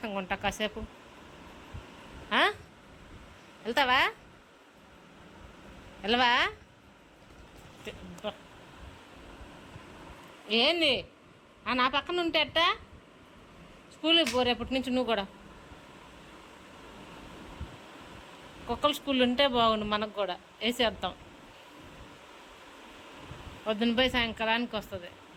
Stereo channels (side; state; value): both; identical; correlation 1.00